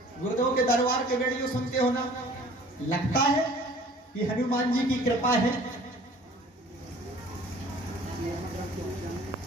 गुरुदेव के दरबार के वीडियो सुनते हो ना? लगता है कि हनुमान जी की कृपा है?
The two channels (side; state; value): both; normal; correlation 0.50